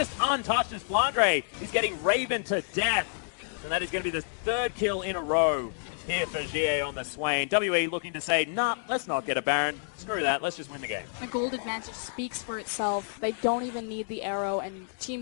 untouched as Flandre. He's getting Raven to death. And that is going to be the 3rd kill in a row here for Xiye on the Swain. WE looking to say, nah, let's not get a Baron. Screw that, let's just win the game. The gold advantage speaks for itself. They don't even need the arrow, and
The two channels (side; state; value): right; silent; digital silence